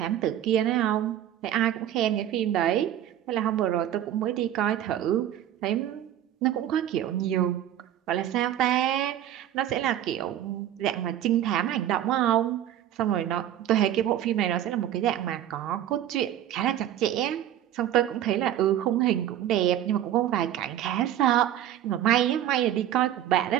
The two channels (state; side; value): quieter; left; 11.4 dB